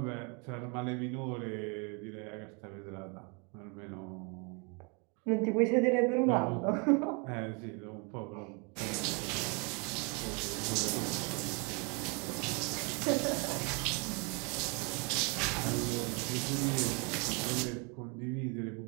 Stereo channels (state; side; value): quieter; left; 32.7 dB